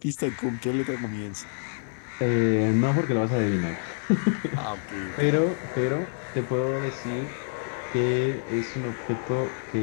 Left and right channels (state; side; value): silent; right; digital silence